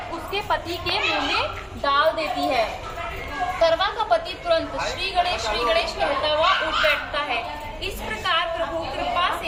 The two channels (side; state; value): both; identical; correlation 1.00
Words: उसके पति के मुंह में डाल देती है। करवा का पति तुरंत श्री गणेश कहता हुआ उठ बैठता है। इस प्रकार प्रभु कृपा